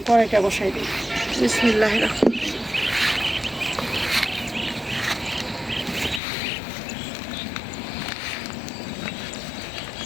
কড়াইটা বসাই দিই। বিসমিল্লাহির রহমানির রহিম।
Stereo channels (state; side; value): drops out; right; at 6.2 s